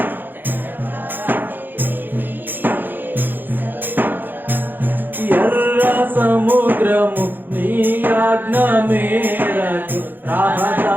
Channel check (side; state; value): left; late; 0.090 ms